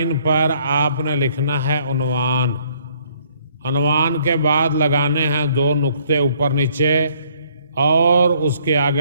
پر آپ نے لکھنا ہے عنوان۔ عنوان کے بعد لگانے ہیں 2 نقطے اوپر نیچے، اور اس کے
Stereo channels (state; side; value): inverted; both; correlation -0.64